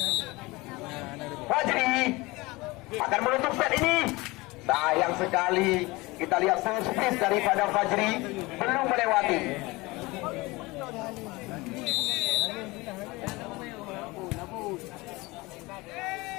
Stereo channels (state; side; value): quieter; right; 22.6 dB